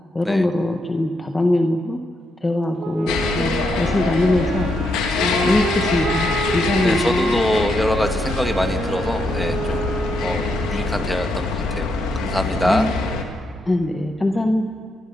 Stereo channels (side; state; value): both; normal; correlation 0.80